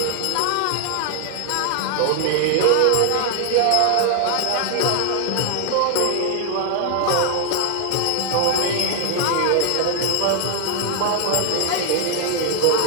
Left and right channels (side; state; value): both; different; correlation 0.00